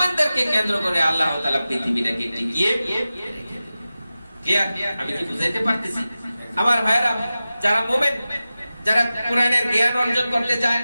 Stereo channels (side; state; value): both; inverted; correlation -0.95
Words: কেন্দ্র করে আল্লাহ তাআলা পৃথিবীটাকে টিকিয়ে রেখে দেবেন। কি আমি কি বুঝাইতে পারতেছি? আমার ভাইরা যারা মুমিন, যারা কোরআনের জ্ঞান অর্জন করতে চায়,